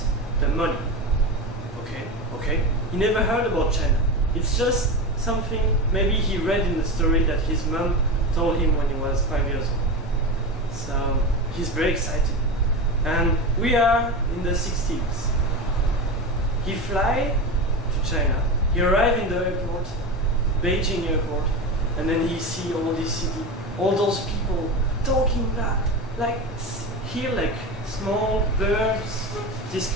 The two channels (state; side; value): normal; both; correlation 0.23